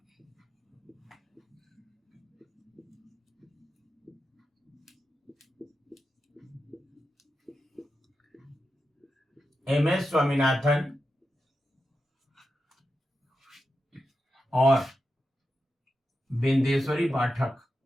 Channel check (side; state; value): both; normal; correlation 0.89